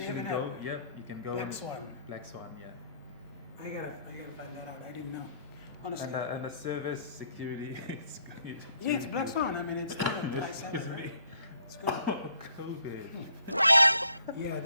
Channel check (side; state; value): both; inverted; correlation -0.65